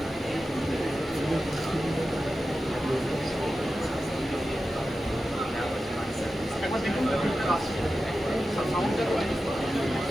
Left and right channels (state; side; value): normal; both; correlation 0.92